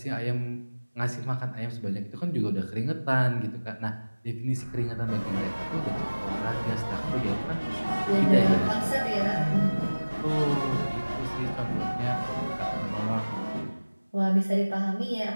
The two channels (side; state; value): both; inverted; correlation -1.00